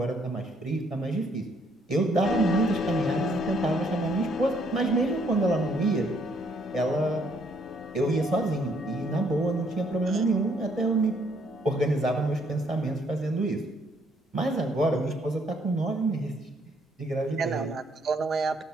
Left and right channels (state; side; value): normal; both; correlation 0.68